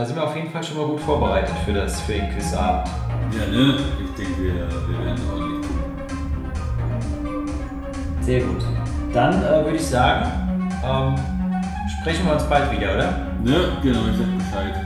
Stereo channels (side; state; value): both; identical; correlation 1.00